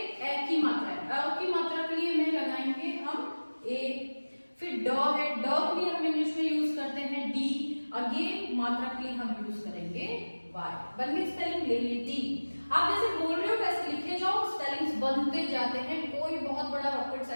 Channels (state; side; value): inverted; both; correlation -1.00